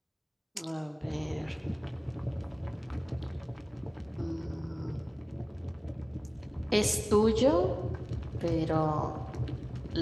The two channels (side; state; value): both; identical; correlation 1.00